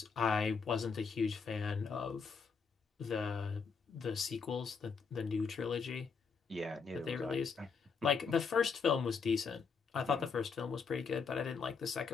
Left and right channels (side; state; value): right; quieter; 5.5 dB